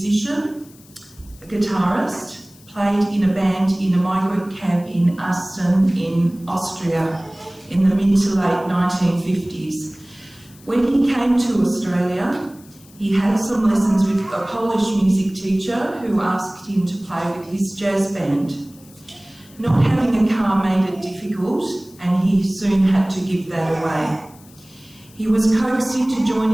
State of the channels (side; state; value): left; noise; hiss, 25 dB below the sound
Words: a guitarist, played in a band in a migrant camp in Asten in Austria in the mid to late 1950s. When he came to Australia, he had some lessons with a Polish music teacher who asked him to play with his jazz band. Not having a car made it difficult, and he soon had to give that away. He was coaxed into